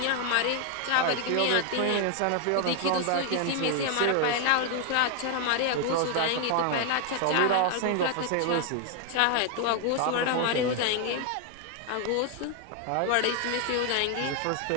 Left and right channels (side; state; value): both; different; correlation 0.00